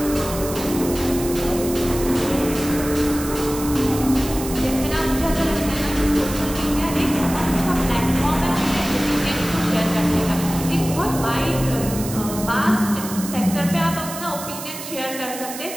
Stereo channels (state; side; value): noise; right; hiss, 10 dB below the sound